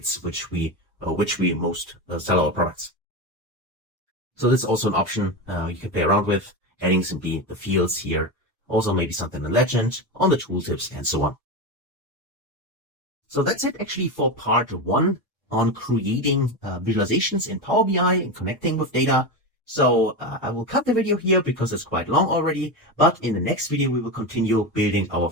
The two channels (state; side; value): normal; both; correlation 0.18